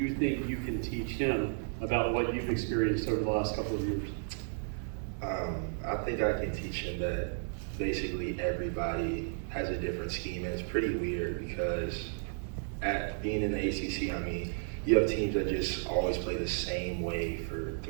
think you can teach him about what you've experienced over the last couple of years? I think I can teach him that basically everybody has a different scheme, and it's pretty weird because at being in the ACC, I mean, you have teams that just always play the same way for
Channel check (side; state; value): left; silent; 56 dB below the other